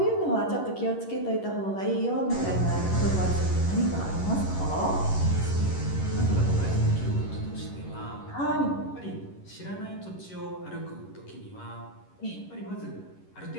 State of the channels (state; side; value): late; right; 11 ms